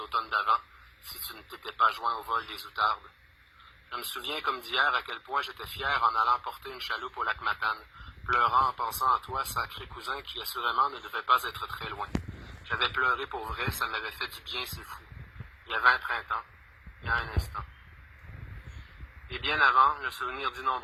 d'avant, si tu ne t'étais pas joint au vol des outardes. Je me souviens comme d'hier à quel point j'étais fier en allant porter une chaloupe au lac Matane, pleurant en pensant à toi, sacré cousin, qui assurément ne devait pas être très loin. J'avais pleuré pour vrai, ça m'avait fait du bien, c'est fou. Il y avait un printemps, il y a un instant. Et bien avant, le souvenir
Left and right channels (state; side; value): identical; both; correlation 1.00